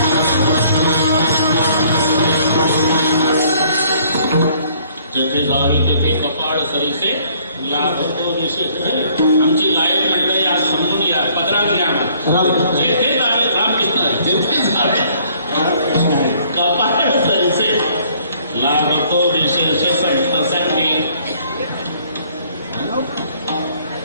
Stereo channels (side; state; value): both; inverted; correlation -0.61